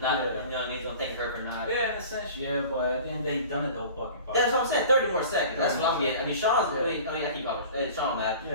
you know what I mean? He's gonna thank her for not. Yeah, in a sense, yeah, but then they've done it the whole fucking fight. That's what I'm saying, 30 more seconds, that's what I'm getting. I mean, Sean's, I mean, I keep calling Sean Matt.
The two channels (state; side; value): inverted; both; correlation -0.42